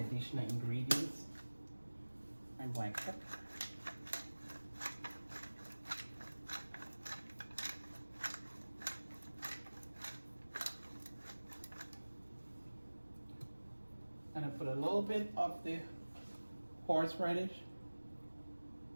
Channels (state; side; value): inverted; both; correlation -1.00